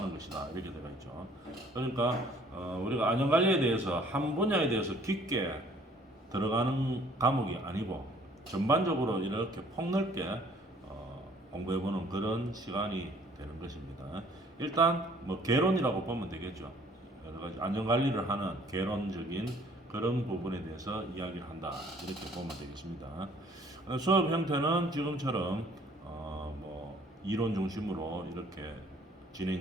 것이다, 이렇게 되어 있죠. 그러니까 우리가 안전관리에 대해서 한 분야에 대해서 깊게 들어가는 과목이 아니고 전반적으로 이렇게 폭넓게 공부해보는 그런 시간이 되는 것입니다. 일단 뭐 개론이라고 보면 되겠죠. 여러 가지 안전관리를 하는 개론적인 그런 부분에 대해서 이야기를 한다, 이렇게 보면 되겠습니다. 수업 형태는 지금처럼 이론 중심으로 이렇게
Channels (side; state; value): both; normal; correlation 0.57